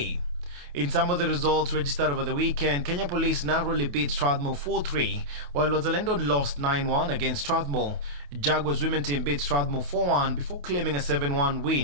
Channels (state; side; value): late; left; 28 ms